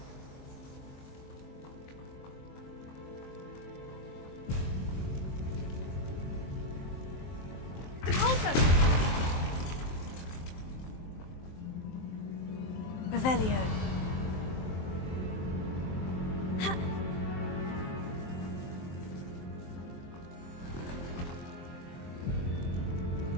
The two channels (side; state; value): right; late; 23 ms